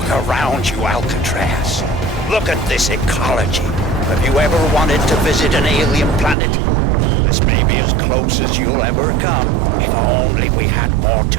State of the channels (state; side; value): drops out; left; at 6.4 s